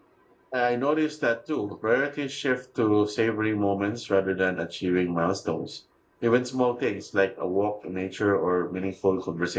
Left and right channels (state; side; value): identical; both; correlation 1.00